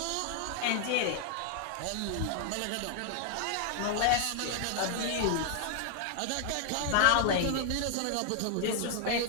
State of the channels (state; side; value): different; both; correlation 0.00